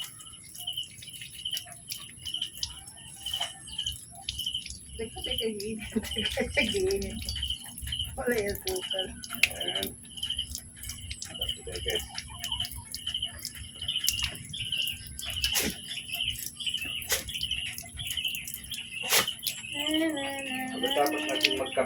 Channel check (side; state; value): both; identical; correlation 1.00